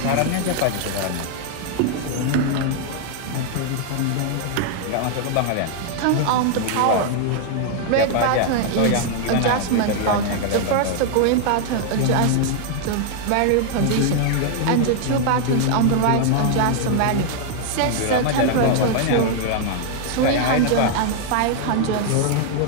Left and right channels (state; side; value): different; both; correlation 0.00